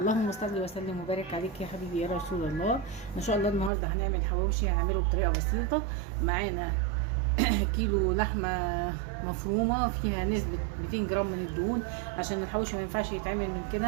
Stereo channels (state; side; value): drops out; left; at 3.7 s